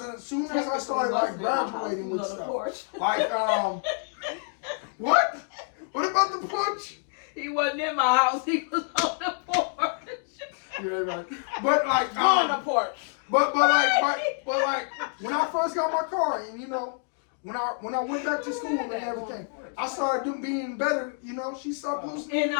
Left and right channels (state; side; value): silent; right; 59 dB below the other